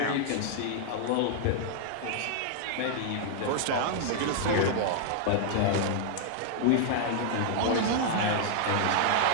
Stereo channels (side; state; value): both; different; correlation 0.00